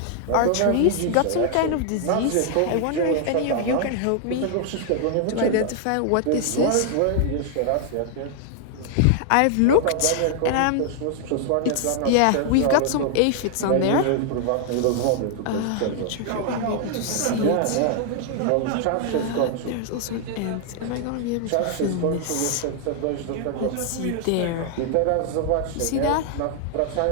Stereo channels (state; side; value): different; both; correlation 0.00